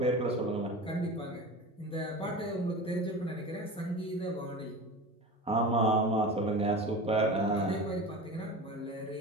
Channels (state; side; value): normal; both; correlation 0.32